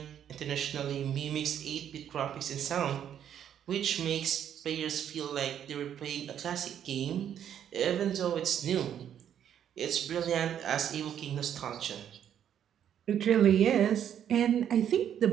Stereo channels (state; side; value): quieter; left; 9.6 dB